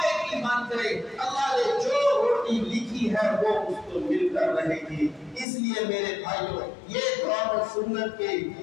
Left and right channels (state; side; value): drops out; right; at 5.5 s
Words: کی بن جائے، اللہ نے جو روٹی لکھی ہے وہ اس کو مل کر رہے گی۔ اس لیے میرے بھائیوں، یہ قرآن و سنت کے